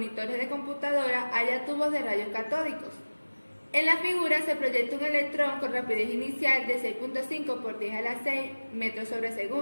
de computadora haya tubos de rayos catódicos. En la figura se proyecta un electrón con rapidez inicial de 6.5 por 10 a la 6 metros sobre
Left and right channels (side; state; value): both; inverted; correlation -1.00